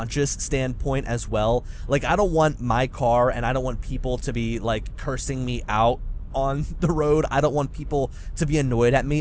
standpoint as well. Like, I don't want my car, and I don't want people to be like cursing me out on the road. I don't want people to be annoyed at me.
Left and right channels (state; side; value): identical; both; correlation 1.00